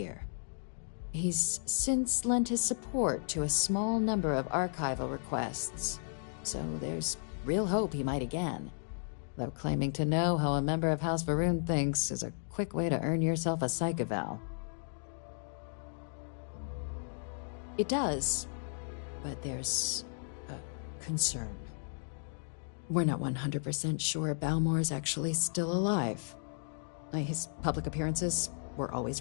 He's since lent his support to a small number of archival requests, so there's real hope he might again. Though claiming to know how a member of House Va'ruun thinks is a quick way to earn yourself a psych eval. It does, but there's a concern. We're not 100% sure Balmore's actually still alive. His public appearances were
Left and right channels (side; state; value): right; silent; digital silence